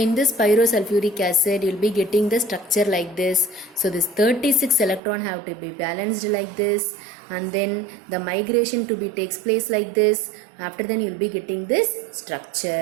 this pyrosulfuric acid you will be getting the structure like this. So this 36 electron have to be balanced like this, and then the migration to be takes place like this. After then you will be getting this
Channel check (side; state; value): left; drops out; at 5.0 s